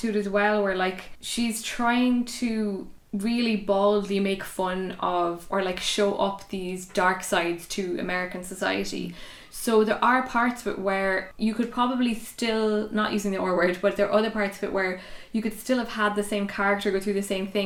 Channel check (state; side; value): identical; both; correlation 1.00